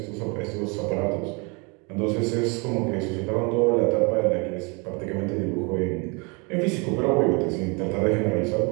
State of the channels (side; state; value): left; quieter; 31.1 dB